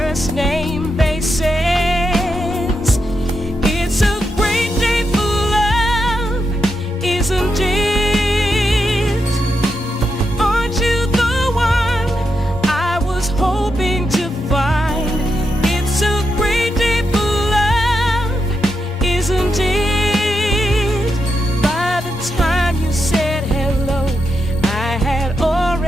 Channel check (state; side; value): normal; both; correlation 0.85